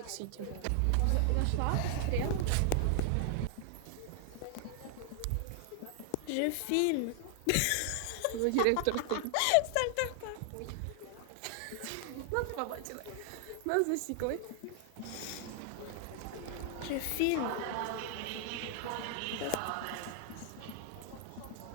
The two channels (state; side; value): different; both; correlation 0.00